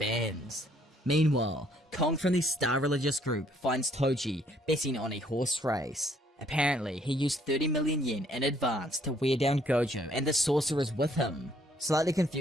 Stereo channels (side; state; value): both; normal; correlation 0.65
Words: Meanwhile, Kong from the Star Religious Group finds Toji betting on a horse race. Apparently, he used 30 million yen in advance to wear down Gojo and the sorcerers with him. Slightly